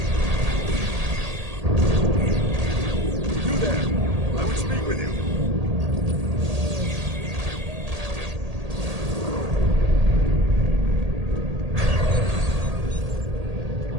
You there! I would speak with you.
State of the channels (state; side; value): late; left; 1.8 ms